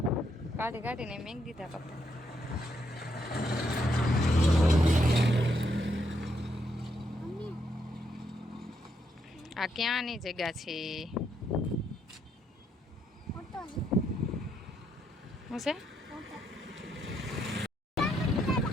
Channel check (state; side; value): normal; both; correlation 0.77